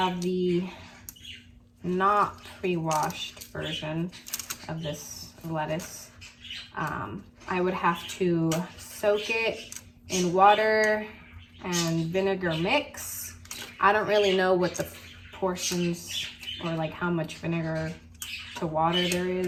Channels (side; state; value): both; identical; correlation 1.00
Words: the not pre-washed version of this lettuce, I would have to soak it in water and vinegar mix. I don't really know what the portions or like how much vinegar to water there